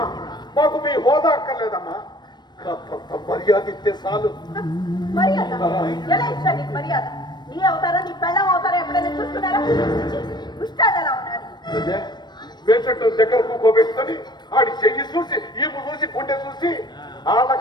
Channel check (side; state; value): right; late; 0.21 ms